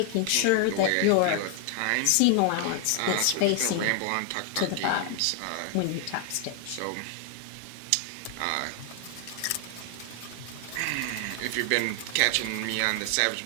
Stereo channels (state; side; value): different; both; correlation 0.00